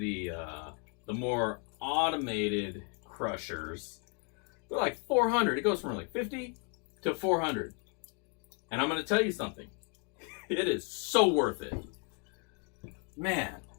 more automated crushers, they're like $400. It goes from like $50 to $400. And I'm going to tell you something. It is so worth it. Man.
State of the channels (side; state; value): right; quieter; 37.2 dB